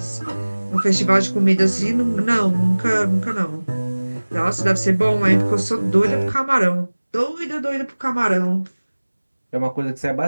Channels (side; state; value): both; inverted; correlation -1.00